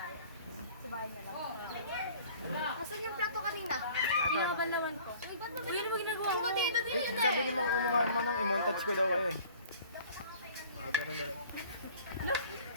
Sa bahay na lang. Asan yung plato kanina? Pinakabanlawan ko. Uy, ba't mo ginagawa mo? Dito din yun Sabi ni Manang i-montage ko daw kayo eh. Ganun na lang.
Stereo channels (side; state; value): both; inverted; correlation -0.50